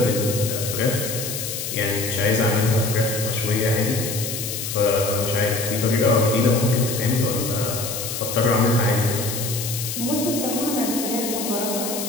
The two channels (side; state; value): left; noise; hiss, 5 dB below the sound